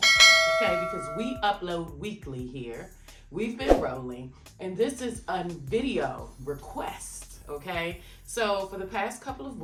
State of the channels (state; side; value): identical; both; correlation 1.00